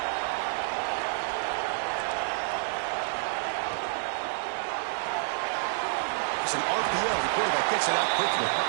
It's an RPO. The quarterback gets it out quickly.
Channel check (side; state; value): left; silent; digital silence